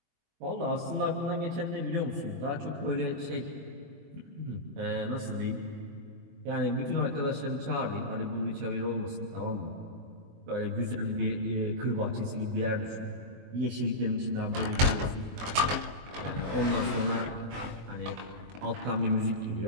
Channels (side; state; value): left; late; 22 ms